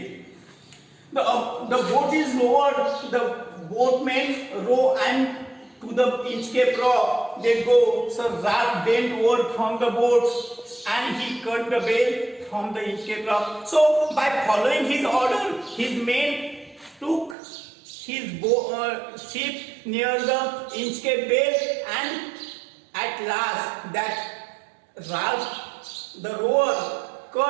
The boat is lowered, the boatmen row and to the Inchcape Rock they go. So Rab bent over from the boat and he cut the bale from the Inchcape Rock. So by following his order, his men took his ship near the Inchcape Bay, and at last that Rab the rower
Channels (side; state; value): left; drops out; at 17.4 s